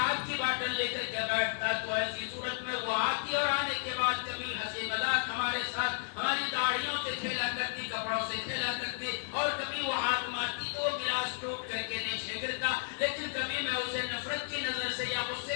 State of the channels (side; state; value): right; silent; 56 dB below the other